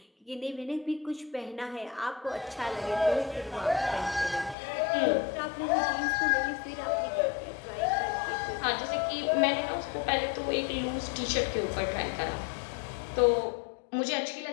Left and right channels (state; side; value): drops out; right; at 4.5 s